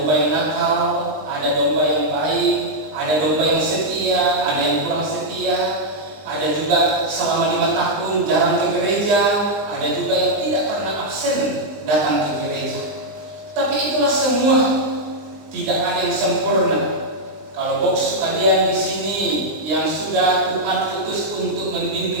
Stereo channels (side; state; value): left; late; 20 ms